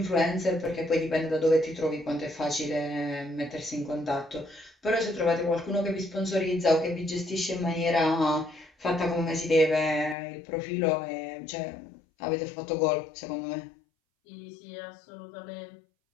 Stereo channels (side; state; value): right; drops out; at 10.2 s